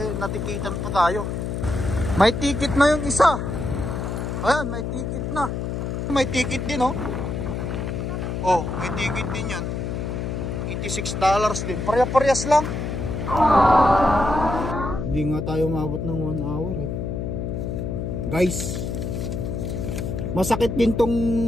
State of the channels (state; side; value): noise; left; hum, 3 dB below the sound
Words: natikitan pa tayo? May ticket na yung isa. Ayan, may ticket na. May ticket din oh. Oh, may ticket din yan. $86 din. Parehas lang. Hindi nga tayo umabot ng 1 hour eh. Guys, masakit din